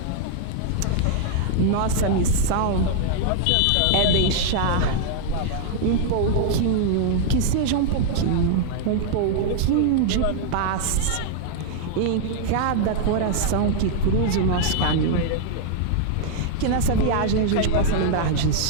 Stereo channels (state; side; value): different; both; correlation -0.01